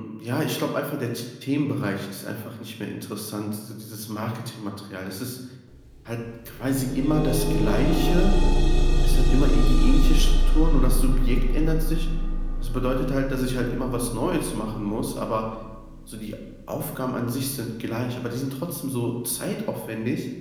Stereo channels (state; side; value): identical; both; correlation 1.00